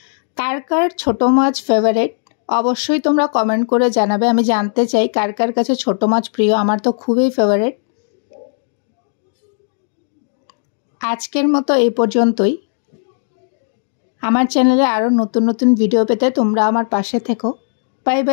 কার কার ছোট মাছ ফেভারিট অবশ্যই তোমরা কমেন্ট করে জানাবে। আমি জানতে চাই কার কার কাছে ছোট মাছ প্রিয়। আমার তো খুবই ফেভারিট। আজকের মতো এই পর্যন্তই। আমার চ্যানেলে আরও নতুন নতুন ভিডিও পেতে তোমরা আমার পাশে থেকো। Bye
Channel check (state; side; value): silent; right; 68 dB below the other